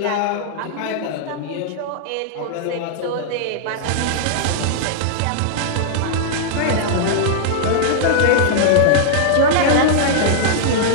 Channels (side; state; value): both; different; correlation -0.01